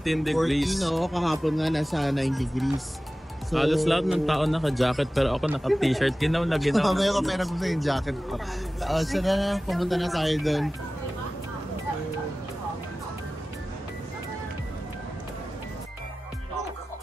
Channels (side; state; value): both; normal; correlation 0.96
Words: degrees. 14, no? Kahapon nga nasa 9 degrees. So, halos lahat ng tao naka-jacket pero ako naka-t-shirt. Ginaw na ginaw. Mamaya ko pera ko sa yung jacket ko. So na, pumunta na tayo doon.